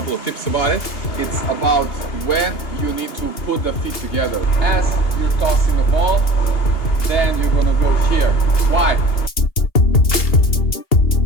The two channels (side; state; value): right; late; 2.8 ms